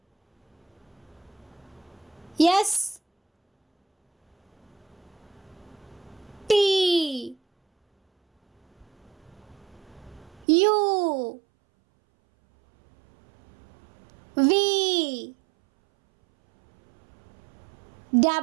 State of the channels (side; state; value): left; drops out; at 10.5 s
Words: S, T, U, V,